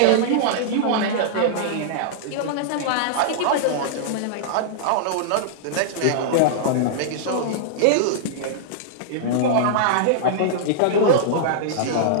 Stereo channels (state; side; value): different; both; correlation -0.02